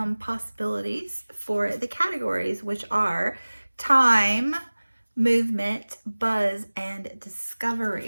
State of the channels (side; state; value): both; inverted; correlation -1.00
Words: possibilities for the categories, which are time, movement, buzz, and